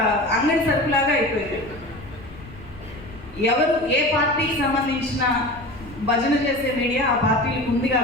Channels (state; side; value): noise; left; rumble, 19 dB below the sound